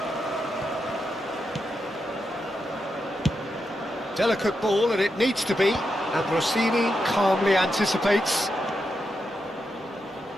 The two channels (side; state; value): both; normal; correlation 0.86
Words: Delicate ball, and it needs to be. Ambrosini calmly anticipates.